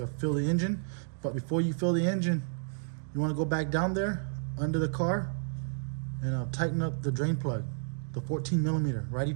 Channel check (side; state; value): left; silent; digital silence